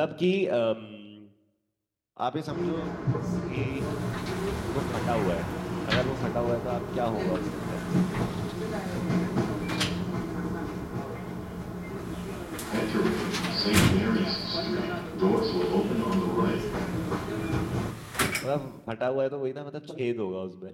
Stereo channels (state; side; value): identical; both; correlation 1.00